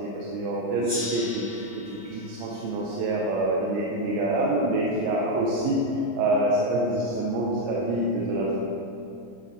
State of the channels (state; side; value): late; left; 26 ms